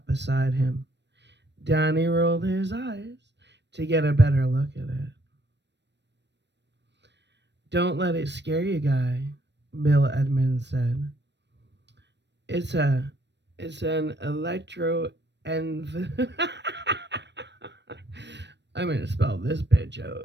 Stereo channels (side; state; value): left; late; 0.51 ms